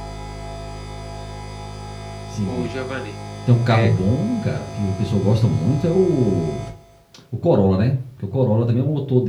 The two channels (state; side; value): identical; both; correlation 1.00